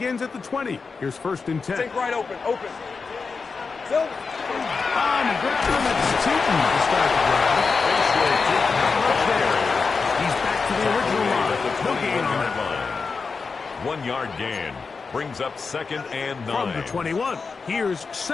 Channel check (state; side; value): quieter; right; 4.8 dB